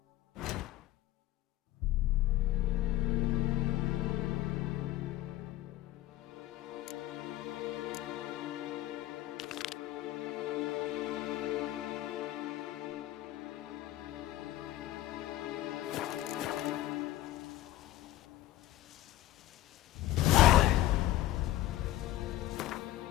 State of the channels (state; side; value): quieter; right; 15.2 dB